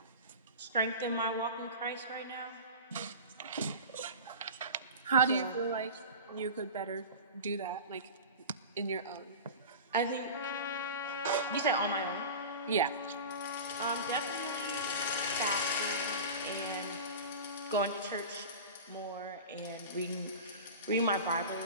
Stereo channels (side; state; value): both; inverted; correlation -0.32